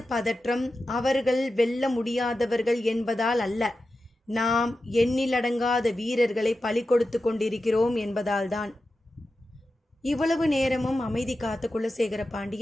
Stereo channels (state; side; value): normal; both; correlation 0.92